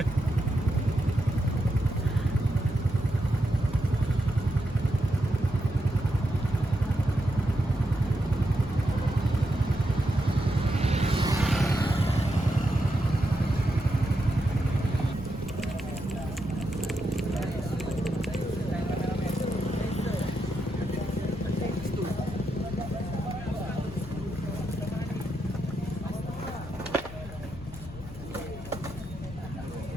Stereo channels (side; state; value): left; noise; rumble, 14 dB below the sound